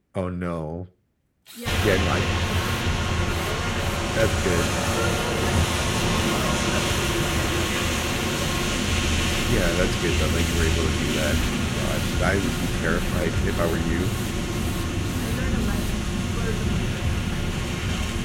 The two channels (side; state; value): both; identical; correlation 1.00